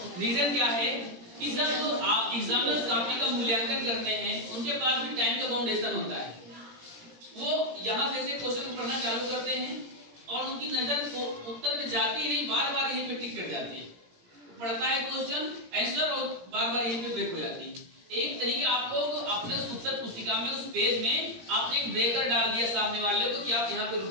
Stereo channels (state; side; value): late; left; 17 ms